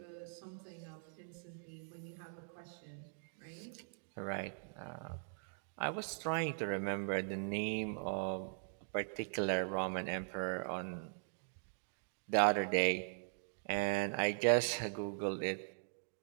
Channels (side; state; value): left; silent; digital silence